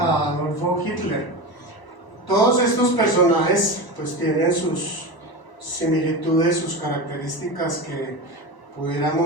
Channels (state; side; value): late; right; 1.0 ms